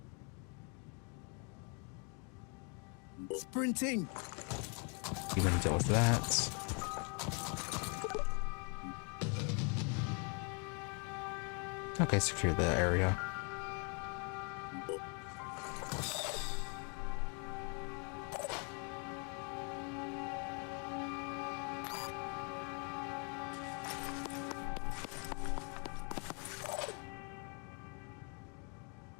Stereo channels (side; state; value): right; quieter; 36.6 dB